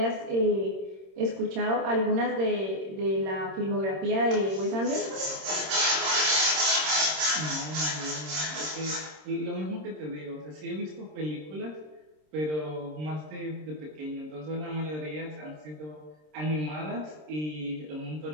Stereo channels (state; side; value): late; left; 26 ms